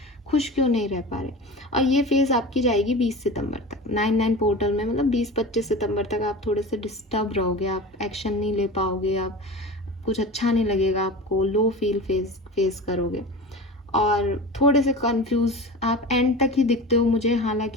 खुश क्यों नहीं रह पा रहे। और ये फेज़ आपकी जाएगी 20 सितंबर तक 9/9 पोर्टल में, मतलब 20-25 सितंबर तक आप थोड़े से डिस्टर्ब रहोगे, आप एक्शन नहीं ले पाओगे, आप कुछ अच्छा नहीं लगेगा आपको, लो फील फेस करोगे और थोड़े से कंफ्यूज आप एंड तक ही दिखते हो मुझे।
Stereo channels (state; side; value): normal; both; correlation 0.32